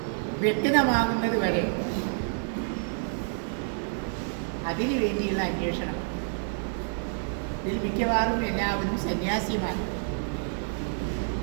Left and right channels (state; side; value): silent; left; digital silence